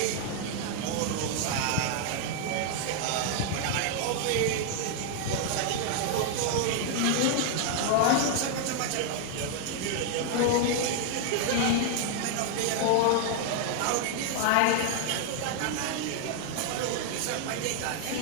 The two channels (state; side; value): different; both; correlation 0.00